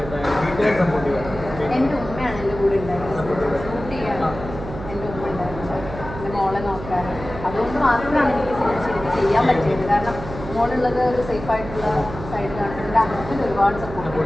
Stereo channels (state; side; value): noise; right; hum, 11 dB below the sound